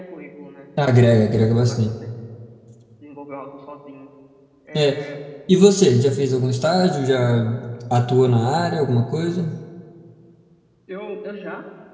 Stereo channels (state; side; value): identical; both; correlation 1.00